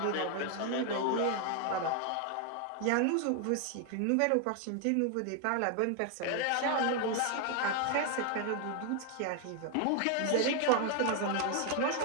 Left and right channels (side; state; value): both; different; correlation 0.01